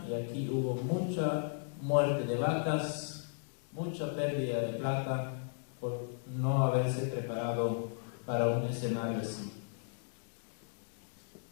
y aquí hubo mucha muerte de vacas, mucha pérdida de plata por no haberse preparado para un escenario así.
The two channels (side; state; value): right; silent; digital silence